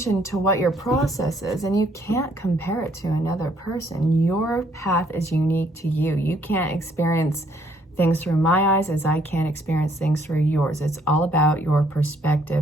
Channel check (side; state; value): both; normal; correlation 0.66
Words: to what your process is, and you can't compare it to another person. Your path is unique to you. You can't experience things through my eyes as I can't experience things through yours. It's all about your